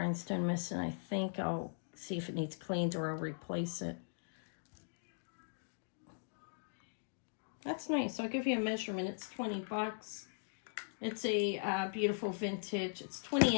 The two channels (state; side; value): silent; right; digital silence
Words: missing. I think I'll see if it needs cleaned or I'll replace it. That's nice. I'll give you a measurement. It's $20. It's a beautiful vintage. It's 20